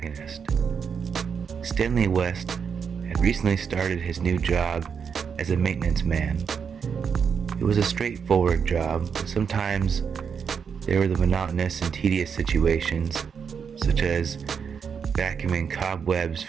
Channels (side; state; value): left; quieter; 6.6 dB